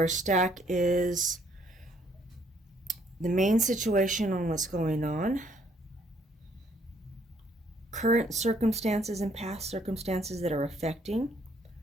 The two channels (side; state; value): both; normal; correlation 0.66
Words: stack is the main situation on what's going on, current circumstances and past circumstances that are affecting